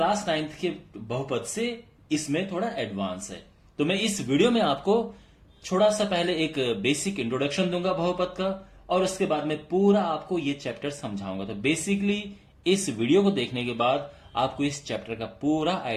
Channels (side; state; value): both; identical; correlation 1.00